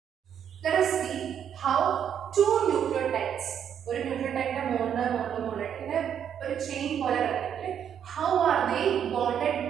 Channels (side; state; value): left; quieter; 8.8 dB